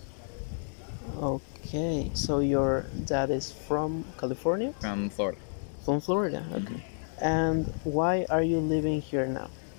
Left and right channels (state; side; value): silent; right; digital silence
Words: Okay. So your dad is from California? From Florida. From Florida. Mhm. Okay. And why are you living here now?